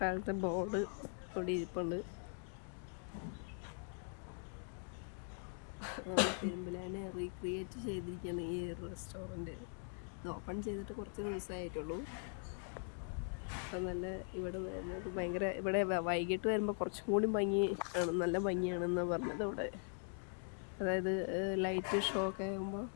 കാലത്തെ ബോർഡ് ഇവിടെ ഇരിപ്പുണ്ട്. നമ്മൾ പെരുമ്പിലാവിനെ റീക്രിയേറ്റ് ചെയ്തിരിക്കുകയാണ് ഈ റെസ്റ്റോറൻറ്റ്. ഇത് ഓപ്പൺ ചെയ്തിട്ട് കുറച്ച് ദിവസമായിട്ടുള്ളൂ. അപ്പം നല്ല ഇവിടെ വരുന്നത് ഭയങ്കര, ഇവിടെ വൈകിട്ട് വരുമ്പോൾ കുറച്ചും കൂടി ഭംഗി ആണ്, നല്ല ഭംഗിയാണെന്ന് പറഞ്ഞത് ഇവിടെ. അതായത് ലൈറ്റ് ഷോ ഒക്കെ ആകുമ്പോൾ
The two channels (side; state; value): right; silent; 50 dB below the other